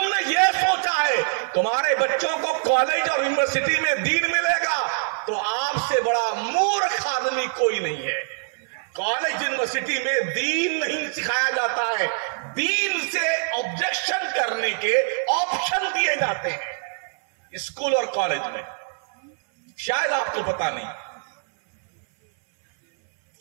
نے یہ سوچا ہے تمہارے بچوں کو کالج اور یونیورسٹی میں دین ملے گا تو آپ سے بڑا مورخ آدمی کوئی نہیں ہے۔ کالج یونیورسٹی میں دین نہیں سکھایا جاتا ہے، دین سے آبجیکشن کرنے کے آپشن دیے جاتے ہیں اسکول اور کالج میں، شاید آپ کو پتا نہیں۔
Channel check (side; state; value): left; silent; 63 dB below the other